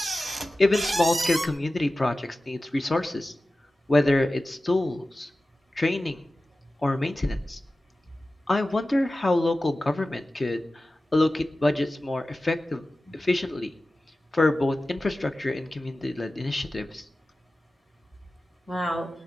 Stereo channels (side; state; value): both; normal; correlation 0.95